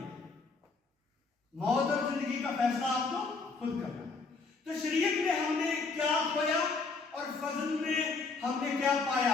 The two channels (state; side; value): quieter; right; 4.2 dB